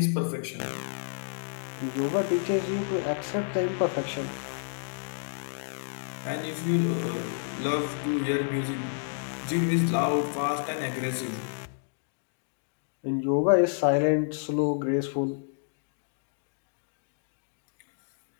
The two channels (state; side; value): silent; right; digital silence